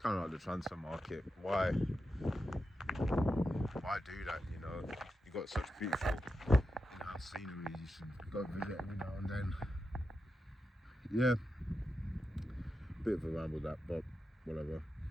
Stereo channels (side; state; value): both; normal; correlation 0.89